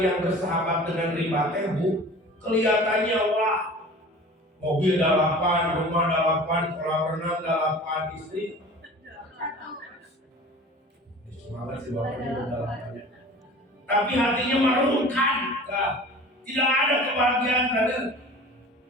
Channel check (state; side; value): normal; both; correlation 0.41